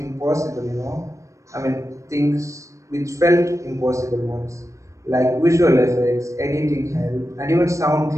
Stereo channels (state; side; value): late; left; 0.15 ms